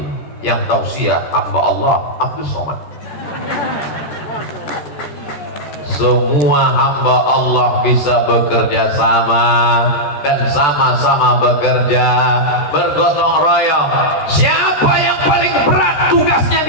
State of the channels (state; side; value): late; right; 14 ms